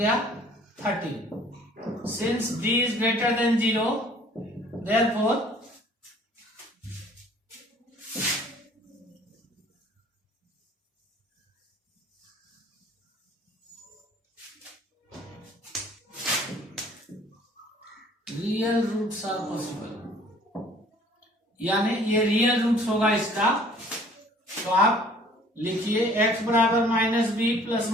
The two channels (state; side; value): normal; both; correlation 0.54